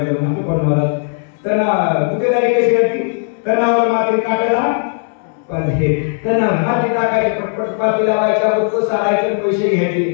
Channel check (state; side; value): silent; right; digital silence